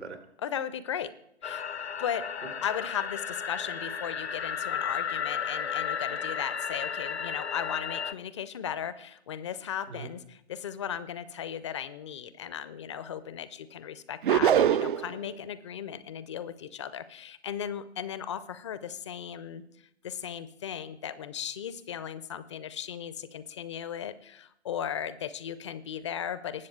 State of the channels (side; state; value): both; normal; correlation 0.13